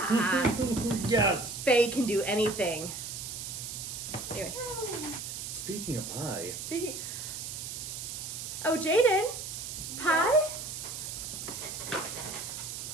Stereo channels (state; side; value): noise; right; hiss, 7 dB below the sound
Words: Yes! Faye can do anything. Anyway. Speaking of pie. Oh, Jaden. Pie?